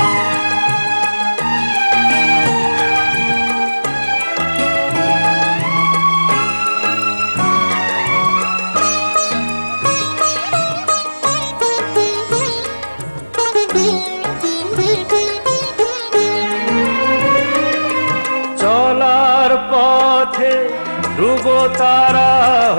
চলার পথে ধ্রুব তারা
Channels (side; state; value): both; inverted; correlation -1.00